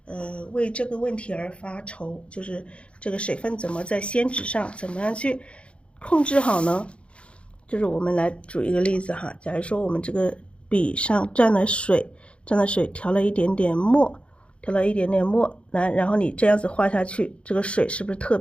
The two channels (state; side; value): late; right; 0.059 ms